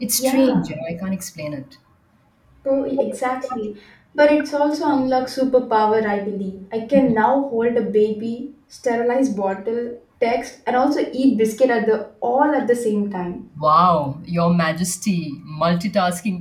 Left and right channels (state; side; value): identical; both; correlation 1.00